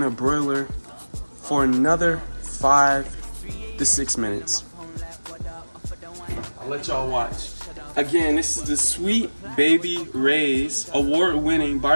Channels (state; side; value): inverted; both; correlation -1.00